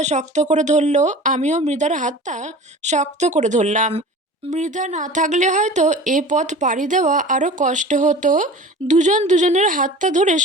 শক্ত করে ধরলো, আমিও মৃধার হাতটা শক্ত করে ধরলাম। মৃধা না থাকলে হয়তো এ পথ পাড়ি দেওয়া আরও কষ্ট হতো। দুজন দুজনের হাতটা ধরে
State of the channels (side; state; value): both; normal; correlation 0.39